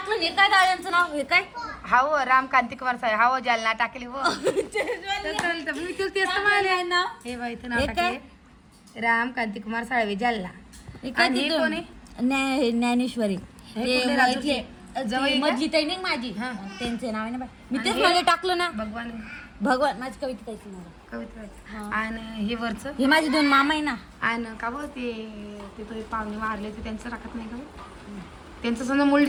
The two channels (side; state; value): both; identical; correlation 1.00